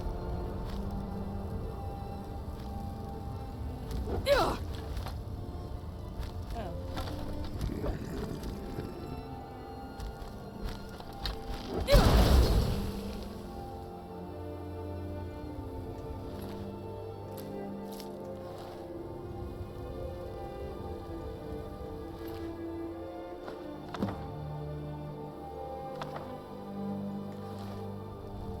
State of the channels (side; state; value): both; identical; correlation 1.00